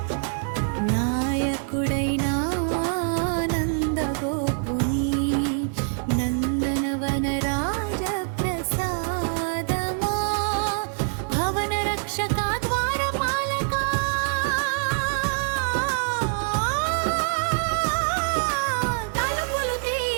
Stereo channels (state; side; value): silent; left; 62 dB below the other